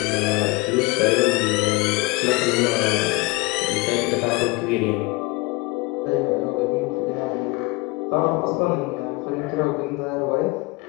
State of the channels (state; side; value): quieter; right; 24.0 dB